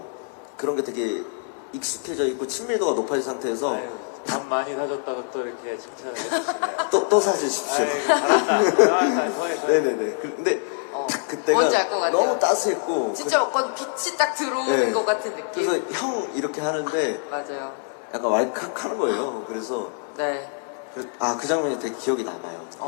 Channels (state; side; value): silent; right; 62 dB below the other